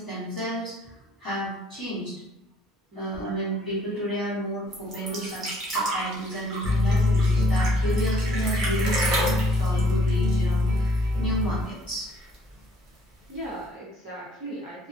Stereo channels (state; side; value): normal; both; correlation 0.62